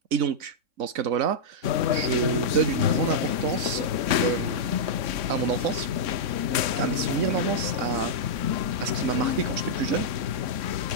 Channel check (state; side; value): late; left; 3.6 ms